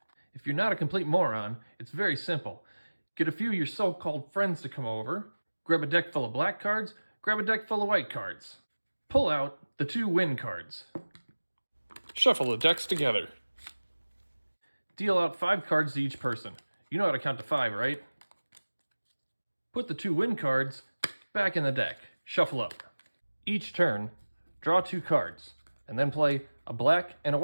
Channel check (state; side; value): inverted; both; correlation -1.00